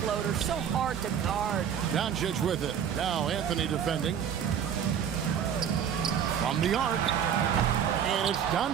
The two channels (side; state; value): left; quieter; 8.5 dB